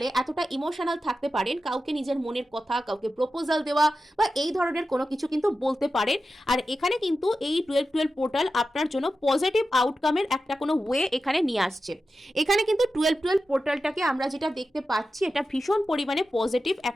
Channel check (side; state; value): both; normal; correlation 0.92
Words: এতটা ইমোশনাল থাকতে পারেন, কাউকে নিজের মনের কথা, কাউকে প্রপোজাল দেওয়া বা এই ধরনের কোনো কিছু কিন্তু বলতে পারেন। আর এখানে কিন্তু এই 12-12 পোর্টাল আপনার জন্য পজিটিভ আউটকামের একটা কোনো ওয়ে এখানে নিয়ে আসছে। এখানে কিন্তু 12-12 পোর্টালটাকে আমরা যেটা দেখতে পাচ্ছি এটা ভীষণ পরিমাণে পজিটিভ